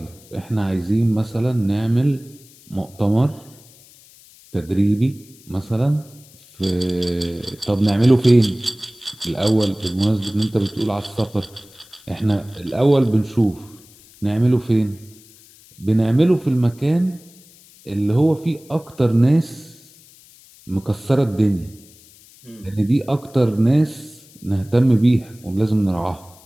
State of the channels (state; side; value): noise; left; hiss, 25 dB below the sound